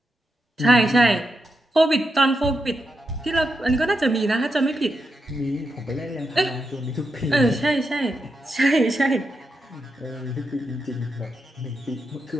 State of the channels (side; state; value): both; normal; correlation 0.85